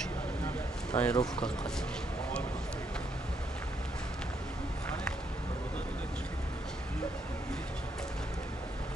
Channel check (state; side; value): normal; both; correlation 0.75